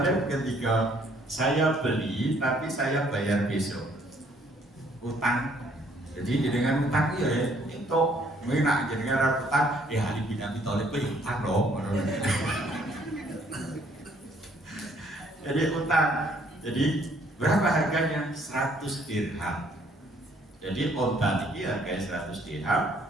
ketika saya beli tapi saya bayar besok. Utang. Jadi jenengan utang ya itu menak jenengan utang Ali bin Abi Thalib utang dong. Jadi utang. Jadi Berapa harganya? 100 dirham. Jadi onta ini harganya 100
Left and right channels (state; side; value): normal; both; correlation 0.64